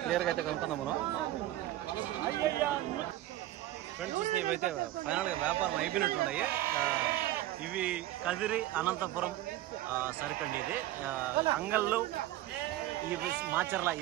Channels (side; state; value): left; quieter; 14.9 dB